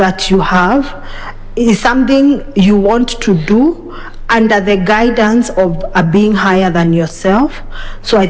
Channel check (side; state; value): both; identical; correlation 1.00